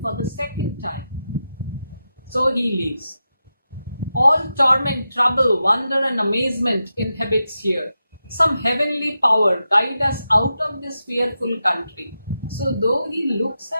for the second time. So he leaves. All torment, trouble, wonder and amazement inhabits here. Some heavenly power guide us out of this fearful country. So though he looks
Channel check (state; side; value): inverted; both; correlation -0.89